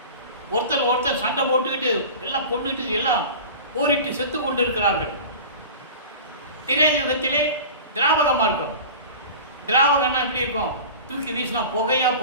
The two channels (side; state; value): both; inverted; correlation -0.36